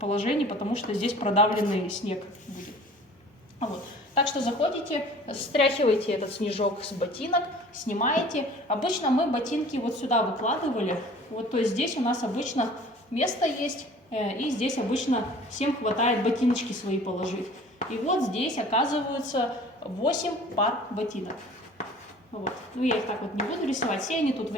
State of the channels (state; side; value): normal; both; correlation 0.47